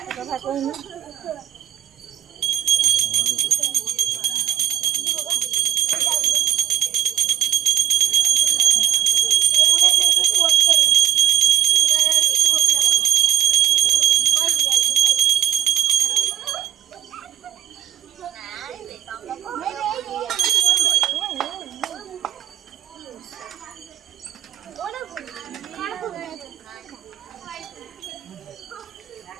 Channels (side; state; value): left; quieter; 11.0 dB